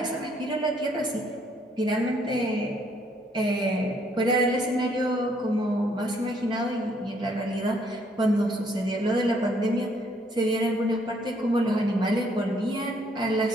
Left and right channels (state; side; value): normal; both; correlation 0.68